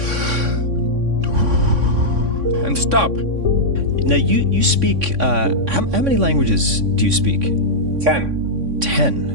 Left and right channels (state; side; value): late; left; 3.6 ms